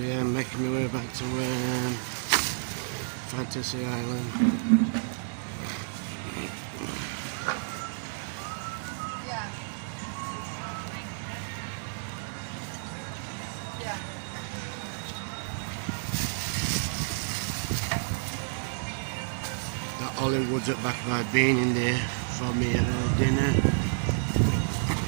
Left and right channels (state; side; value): silent; left; digital silence